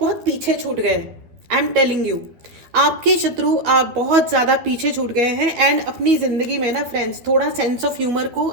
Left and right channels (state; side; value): late; left; 12 ms